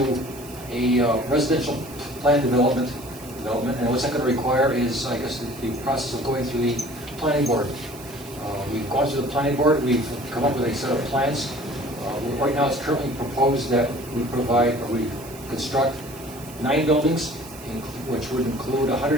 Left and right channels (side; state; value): right; noise; hiss, 18 dB below the sound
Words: a residential plan development, and what's that going to require is, I guess, the process of going through the planning board. We've gone through the planning board, we've come up with a set of plans. Right now, it's currently proposed that we construct 9 buildings, which would include